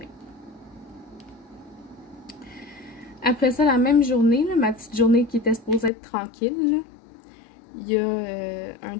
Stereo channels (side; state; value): right; drops out; at 5.9 s